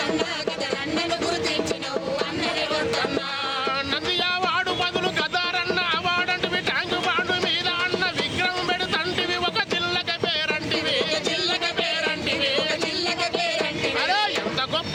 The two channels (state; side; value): identical; both; correlation 1.00